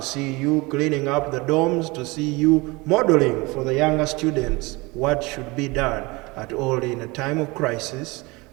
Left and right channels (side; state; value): left; quieter; 24.3 dB